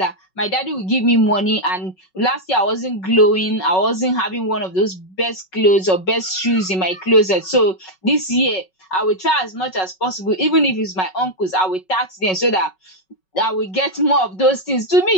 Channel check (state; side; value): late; right; 5.4 ms